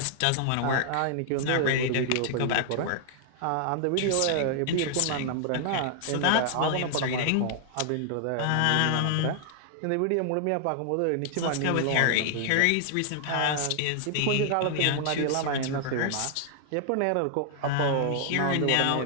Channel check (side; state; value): both; different; correlation 0.00